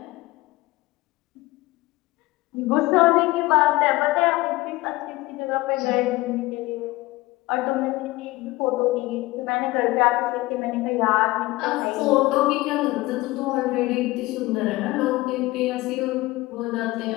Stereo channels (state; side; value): quieter; right; 19.7 dB